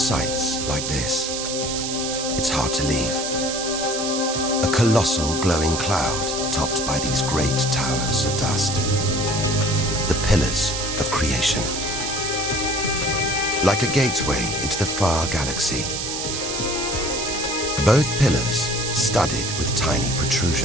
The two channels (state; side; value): noise; right; hiss, 3 dB below the sound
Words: like this, it's hard to leave. A colossal glowing cloud topped by these great towers of dust. The pillars of creation. Like a gateway into the far galaxy. Both pillars studded with tiny